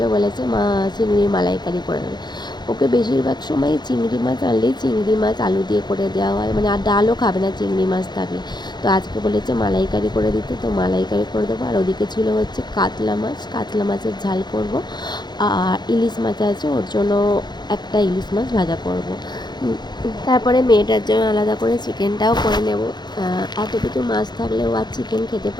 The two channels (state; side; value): late; right; 0.21 ms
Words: বলেছে মা চিংড়ির মালাইকারি করে দেবে। ওকে বেশিরভাগ সময় চিংড়ি মাছ আনলেই চিংড়ি মাছ আলু দিয়ে করে দেওয়া হয়, মানে আর ডালও খাবে না চিংড়ি মাছ থাকলে। তো আজকে বলেছে মালাইকারি করে দিতে, তো মালাইকারি করে দেবো। আর ওদিকে ছিল হচ্ছে কাতলা মাছ, কাতলা মাছের ঝাল করব। আর ইলিশ মাছ আছে, ওর জন্য একটা ইলিশ মাছ ভাজা করব। তারপরে মেয়েটার জন্য আলাদা করে চিকেনটাও করে নেব। এত কিছু মাছ থাকলেও আর চিকেন খেতে